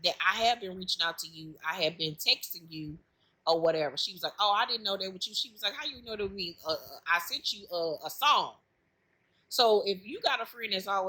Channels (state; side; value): identical; both; correlation 1.00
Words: have been reaching out to you. I have been texting you or whatever. She was like, oh, I didn't know that with you. She was like, how you know that we, I sent you a song. So if you got a friend that's